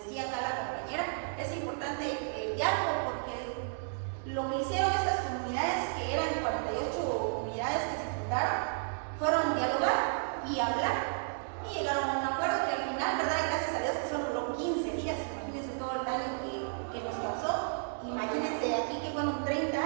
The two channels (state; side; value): silent; left; digital silence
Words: acá la compañera, es importante el diálogo porque lo que hicieron estas comunidades, que eran 48 comunidades que se fundaron, fueron dialogar y hablar y llegaron a un acuerdo que al final, ¿verdad?, gracias a Dios que solo duró 15 días. Imagínense todo el daño que nos causó. Imagínense aquí que fueron 30